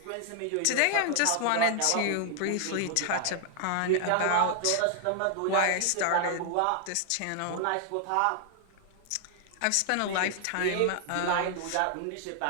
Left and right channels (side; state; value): both; different; correlation 0.00